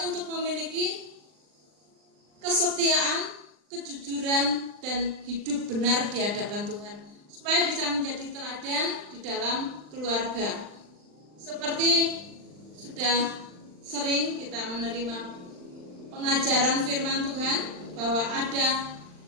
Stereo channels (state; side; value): late; left; 39 ms